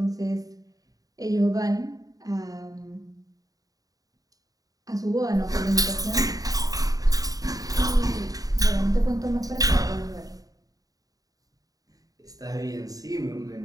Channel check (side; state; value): left; late; 0.18 ms